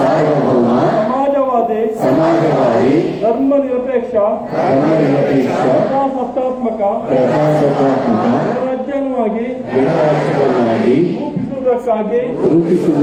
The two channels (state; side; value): identical; both; correlation 1.00